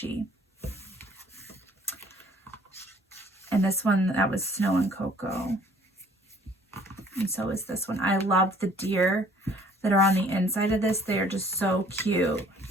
And this one, that was Snow and Cocoa. And so is this one. I love the deer that are on the inside of this. They are just so cute.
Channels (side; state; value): both; normal; correlation 0.57